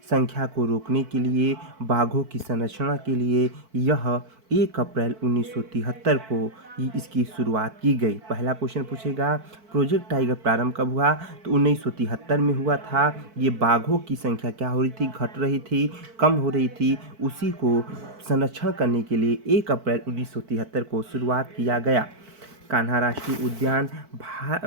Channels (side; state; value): left; late; 4.5 ms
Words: संख्या को रोकने के लिए, बाघों की संरक्षण के लिए यह 1 अप्रैल 1973 को इसकी शुरुआत की गई। पहला क्वेश्चन पूछेगा प्रोजेक्ट टाइगर प्रारंभ कब हुआ, तो 1973 में हुआ था। ये बाघों की संख्या क्या हो रही थी, घट रही थी, कम हो रही थी, उसी को संरक्षण करने के लिए 1 अप्रैल 1973 को शुरुआत किया गया। कान्हा राष्ट्रीय उद्यान